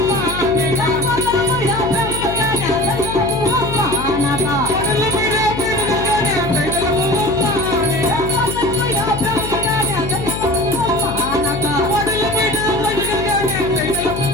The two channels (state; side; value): noise; left; hum, 8 dB below the sound